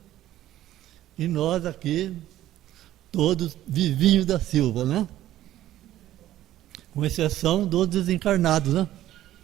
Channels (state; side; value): quieter; left; 13.5 dB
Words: e nós aqui, todos vivinhos da Silva, né? Com exceção dos desencarnados, né?